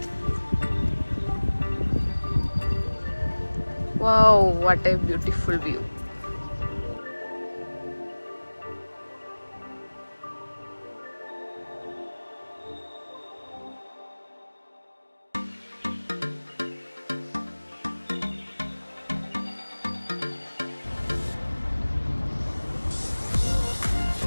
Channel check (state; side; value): inverted; both; correlation -1.00